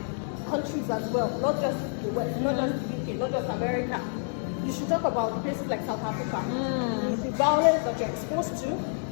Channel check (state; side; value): silent; right; 59 dB below the other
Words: countries as well, not just the West, not just the UK, not just America. You should talk about places like South Africa. The violence that you're exposed to,